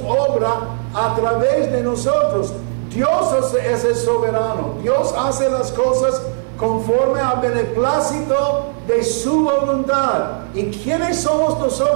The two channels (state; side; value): silent; left; 61 dB below the other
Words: obra a través de nosotros. Dios es el soberano. Dios hace las cosas conforme al beneplácito de su voluntad. ¿Y quiénes somos